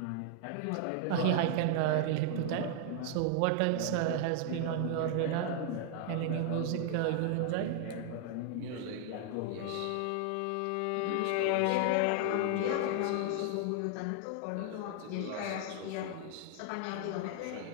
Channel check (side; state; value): both; different; correlation 0.00